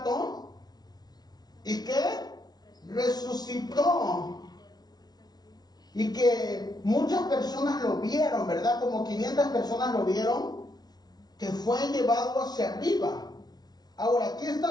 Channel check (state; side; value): late; right; 0.19 ms